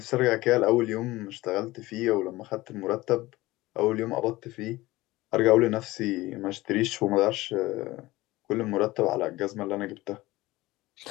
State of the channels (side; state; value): right; quieter; 19.0 dB